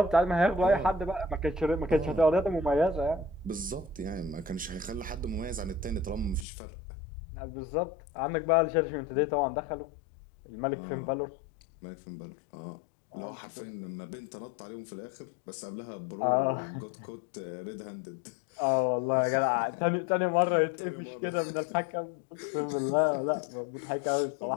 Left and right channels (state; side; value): drops out; right; at 6.5 s